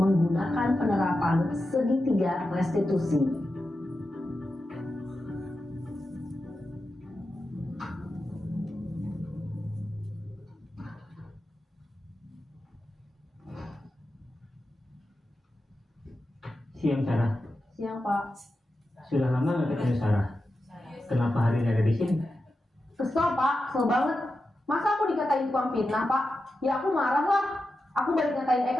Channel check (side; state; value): both; normal; correlation 0.90